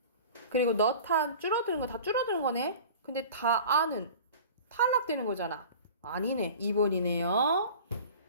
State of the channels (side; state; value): both; inverted; correlation -0.40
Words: 그리고 너탄 줄어드는 거 다 줄어드는 거네. 근데 다 아는 탈락되는 거잖아. 아니네. 2번이네요.